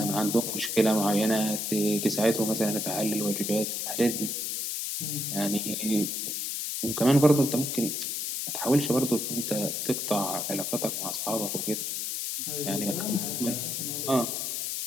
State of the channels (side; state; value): left; noise; hiss, 2 dB below the sound